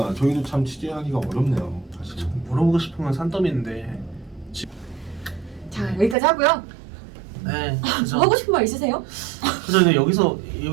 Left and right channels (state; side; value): drops out; left; at 6.2 s